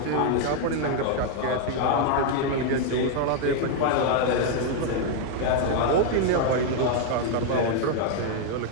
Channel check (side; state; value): both; different; correlation 0.00